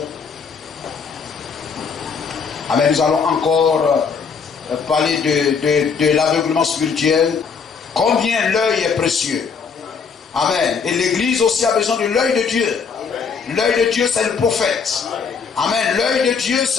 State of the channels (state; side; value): quieter; right; 5.8 dB